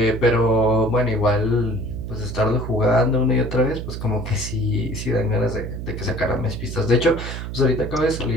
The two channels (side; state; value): right; noise; hum, 7 dB below the sound